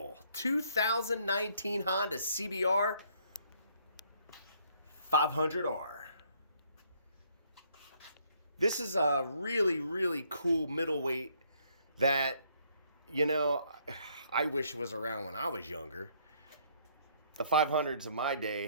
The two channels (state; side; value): inverted; both; correlation -0.66